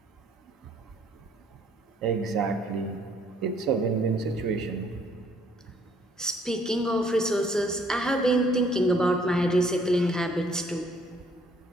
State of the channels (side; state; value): both; normal; correlation 0.63